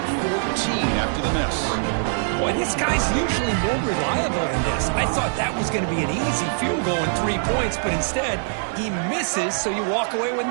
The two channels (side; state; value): left; silent; digital silence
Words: 14 after the miss. Boy, this guy's usually more reliable than this. I thought that was going to be an easy field goal and 3 points, but instead, he misses, so you walk away with